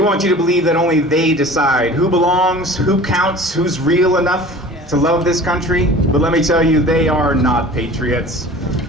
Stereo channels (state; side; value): normal; both; correlation 0.42